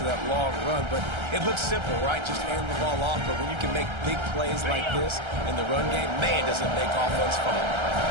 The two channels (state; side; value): late; left; 1.3 ms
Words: that long run, but it looks simple, right? Just hand the ball off, but when you can make big plays like this in the run game, man, does it make offense fun.